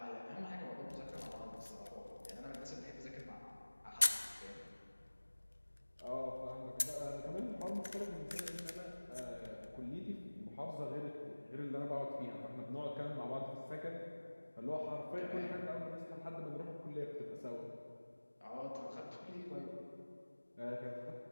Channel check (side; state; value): both; inverted; correlation -1.00